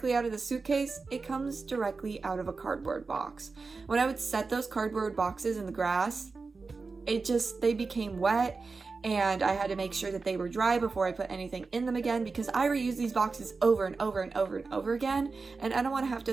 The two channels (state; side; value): quieter; left; 4.2 dB